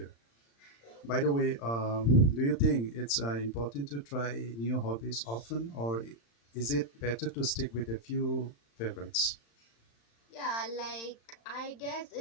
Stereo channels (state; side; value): late; right; 35 ms